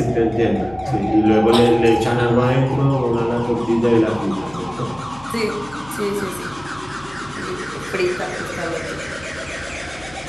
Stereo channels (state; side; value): noise; left; hum, 21 dB below the sound